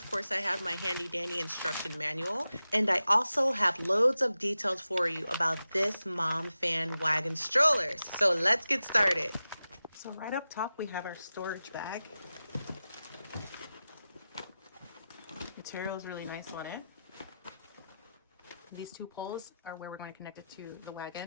course I have my handy dandy instruction manual. And I also have loads of details for you about this Momfann wagon stroller. So let's get started. So right up top we have our storage bag. Material is really nice on it. These two poles are where we're going to connect it to the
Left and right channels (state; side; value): inverted; both; correlation -0.93